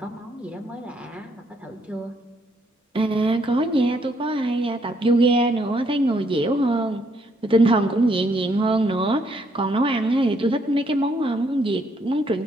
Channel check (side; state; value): both; normal; correlation 0.71